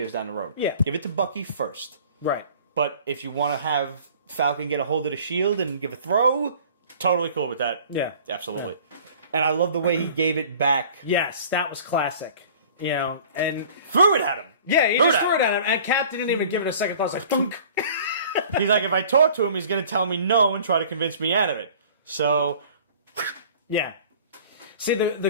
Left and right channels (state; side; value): inverted; both; correlation -0.48